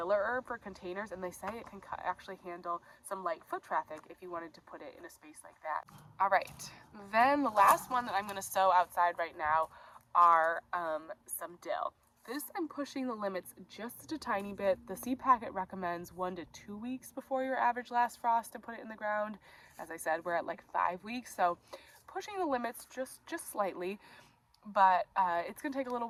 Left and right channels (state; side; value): identical; both; correlation 1.00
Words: herb for containers, and they say it can actually handle some light foot traffic if you wanted to put it in a space like that. All right, then the last one that I'm going to sow outside right now are some dill. This I'm pushing the limits just a tiny bit. The seed packet recommends 1 to 2 weeks before your average last frost to put it in the ground. As I said, we're at like 5 weeks, so pushing the limits just slightly. But it's going to take a little